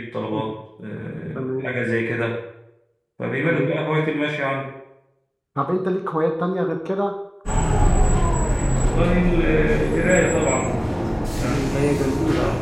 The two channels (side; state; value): both; identical; correlation 1.00